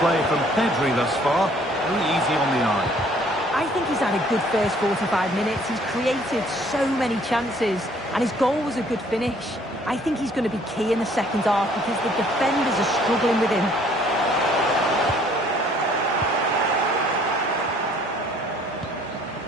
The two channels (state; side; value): normal; both; correlation 0.59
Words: from Pedri thus far. Very easy on the eye. I think he's had a good first 45 minutes. He's created so many chances, and his goal was a good finish. I think he's going to be key in the second half because the defenders are struggling with him.